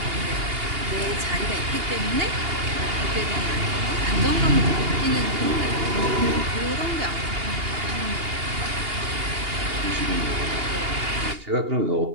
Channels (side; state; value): left; late; 2.8 ms